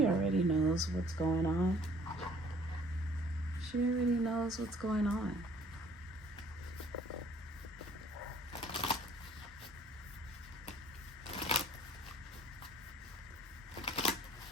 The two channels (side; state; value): both; normal; correlation 0.57